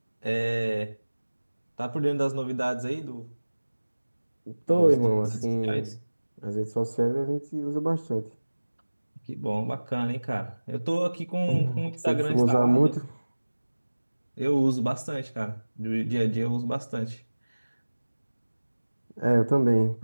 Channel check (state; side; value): inverted; both; correlation -1.00